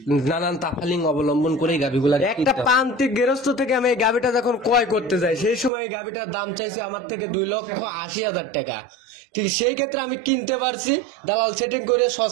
নানান তাফালিং অবলম্বন করে এই গাভীগুলা একটা প্রান্তিক গৃহস্থ থেকে আমি এই গাভিটা যখন ক্রয় করতে যাই সেই সময় এই গাভিটার দাম চাইছে আমার থেকে 2,80,000 টাকা। ঠিক সেই ক্ষেত্রে আমি কিনতে পারছি, দালাল সেটিং করে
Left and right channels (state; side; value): drops out; left; at 5.7 s